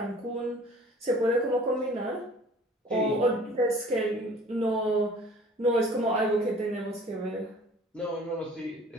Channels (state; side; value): normal; both; correlation 0.49